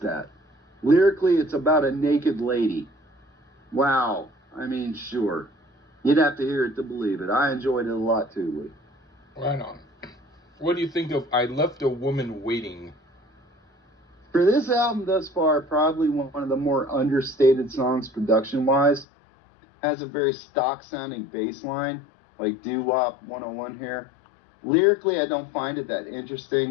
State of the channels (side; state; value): right; drops out; at 19.1 s